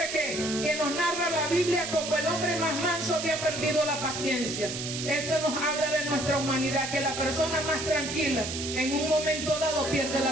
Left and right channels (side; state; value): right; noise; hiss, 5 dB below the sound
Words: que nos narra la Biblia como el hombre más manso, había perdido la paciencia. Esto nos habla de nuestra humanidad, que la persona más tranquila en un momento dado pierde